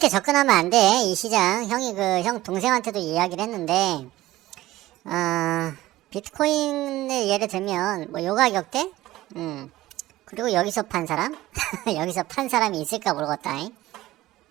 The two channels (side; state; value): left; quieter; 16.5 dB